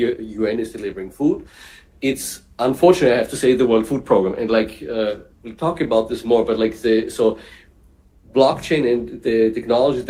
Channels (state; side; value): identical; both; correlation 1.00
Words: UN is delivering food, it's unfortunately, I have to say, the World Food Program. And like we'll talk about this more, but like so blockchain and the technologies